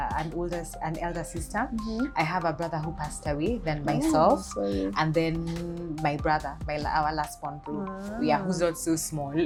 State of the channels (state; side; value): identical; both; correlation 1.00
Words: elder sister. I have a brother who passed away, then myself, and then my brother, our last born bro. Yeah, who's not so small